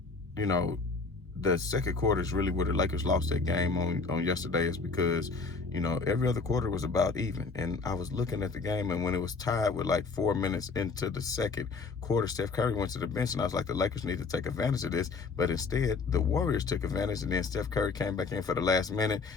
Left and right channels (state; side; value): quieter; right; 4.4 dB